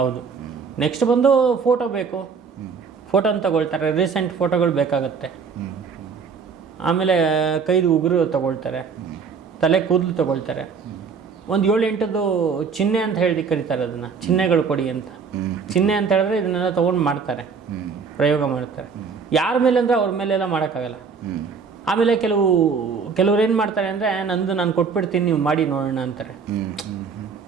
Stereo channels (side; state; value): left; quieter; 5.7 dB